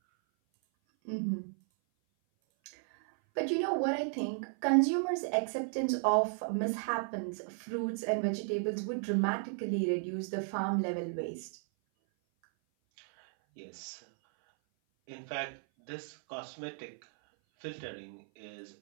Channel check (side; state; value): left; silent; 55 dB below the other